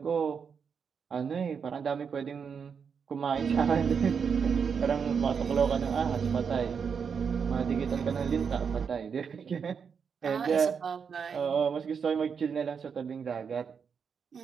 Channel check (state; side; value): quieter; left; 6.4 dB